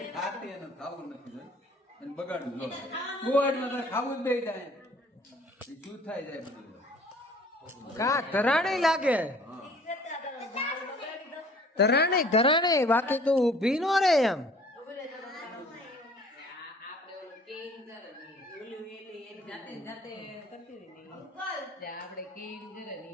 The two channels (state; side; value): normal; both; correlation 0.53